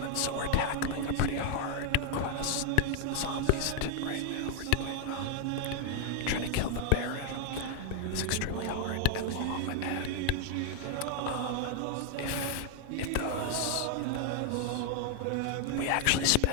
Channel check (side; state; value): both; different; correlation 0.00